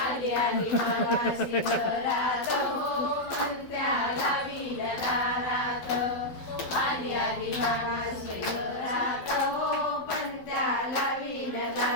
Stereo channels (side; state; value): right; late; 12 ms